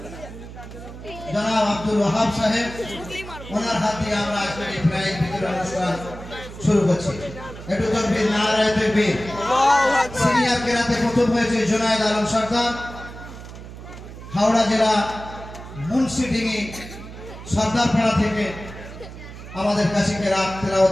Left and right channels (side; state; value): right; noise; hum, 13 dB below the sound